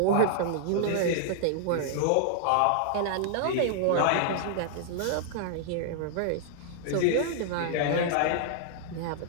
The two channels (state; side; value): different; both; correlation -0.01